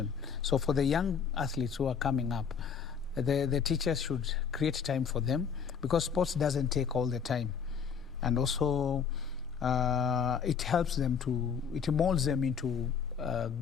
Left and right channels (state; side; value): quieter; right; 6.8 dB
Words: So for the young athletes who are coming up, the teachers should create time for them, because sports doesn't take all the time. And also it helps them it molds them into